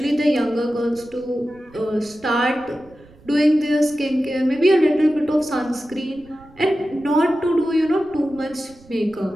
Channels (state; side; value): noise; right; rumble, 25 dB below the sound